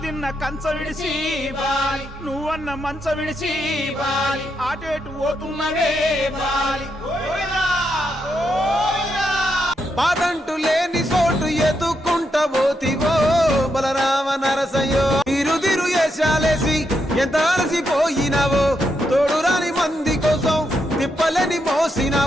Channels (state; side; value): normal; both; correlation 0.81